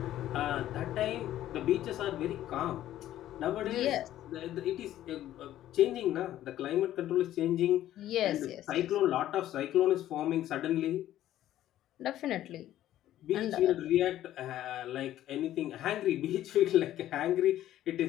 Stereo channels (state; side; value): quieter; right; 13.0 dB